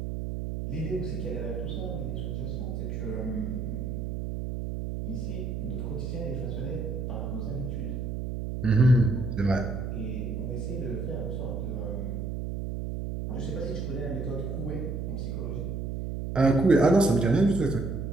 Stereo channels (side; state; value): right; noise; hum, 3 dB below the sound